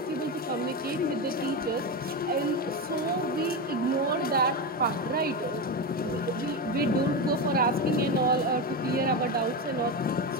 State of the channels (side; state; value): both; normal; correlation 0.15